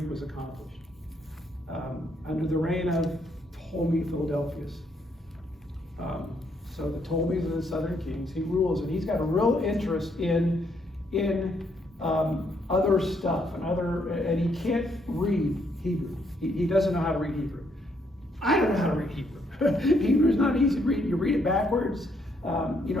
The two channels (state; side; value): normal; both; correlation 0.73